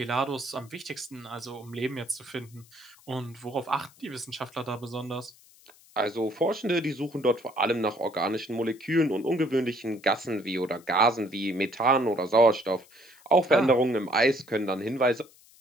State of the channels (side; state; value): left; noise; hiss, 26 dB below the sound